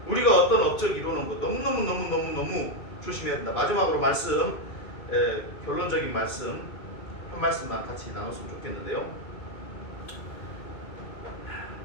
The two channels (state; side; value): late; right; 2.5 ms